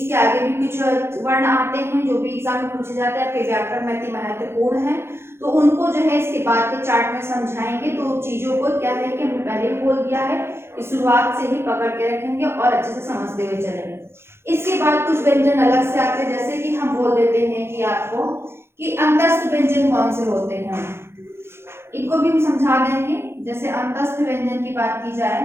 आगे भी कुछ वर्ण आते हैं जो भी एग्जाम में पूछे जाते हैं, आपके व्याकरण में अति महत्वपूर्ण है। तो उनको जो है इसके बाद के चार्ट में समझाएंगे। तो चीजों को क्या है कि हमने पहले भी बोल दिया है कि शुरुआत से ही पकड़ के रखेंगे और अच्छे से समझते हुए चलेंगे। इसके बाद कुछ व्यंजन अलग से आते हैं, जैसे कि हम बोल देते हैं कि आपको कि अंतस्थ व्यंजन कौन से होते हैं, इनको भी हम समझा देंगे। जैसे अंतस्थ व्यंजन की बात की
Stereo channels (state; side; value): late; left; 0.12 ms